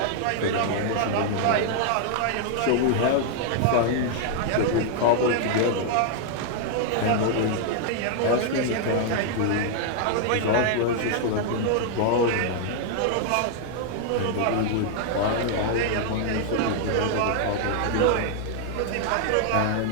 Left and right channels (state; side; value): different; both; correlation 0.00